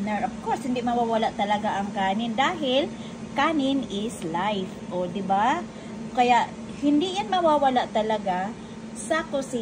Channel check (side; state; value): both; identical; correlation 1.00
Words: Of course, hindi mawawala talaga ang kanin dahil kanin is life. O, diba? Kaya, hindi yan mawawala talaga sa